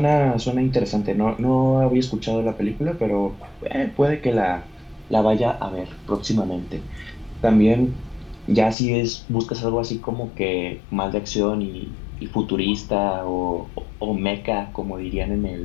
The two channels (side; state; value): right; drops out; at 8.8 s